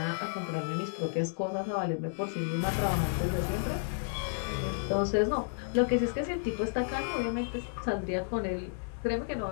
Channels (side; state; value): right; silent; digital silence